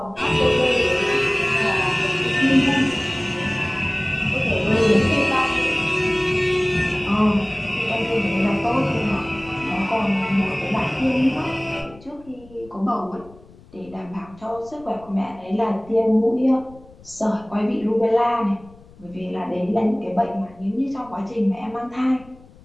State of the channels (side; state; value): left; noise; rumble, 24 dB below the sound